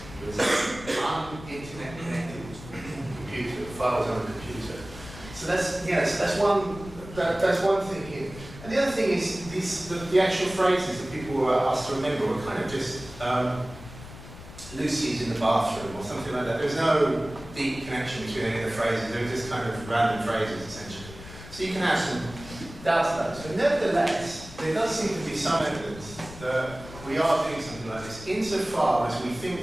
It was an internet connected computer, files on a computer. So that's one thing here. And the other thing is the actual phrases that people were asked to remember were kind of just Lucy's in the bathroom or something like that. There's no deep connection between any of the phrases. They were just kind of random phrases essentially. So you can have some doubts about this. But nevertheless, there does seem to be some evidence that we are doing something like this insofar as we think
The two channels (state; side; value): noise; left; rumble, 15 dB below the sound